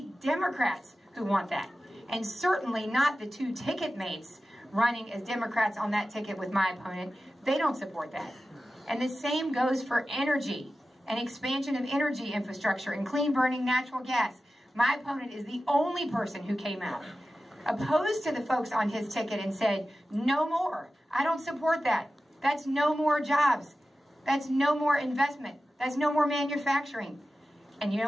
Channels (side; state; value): both; normal; correlation 0.94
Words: Democrats who want that. And certainly not the two ticket mates running as Democrats on that ticket with my opponent. They don't support that. And the same goes for energy and expansion of energy infrastructure and clean burning natural gas. My opponent is the only person who came out opposed to the folks on his ticket and said, no more. I don't support that. That's no more jobs. That's no more investment. That's no more manufacturing. And you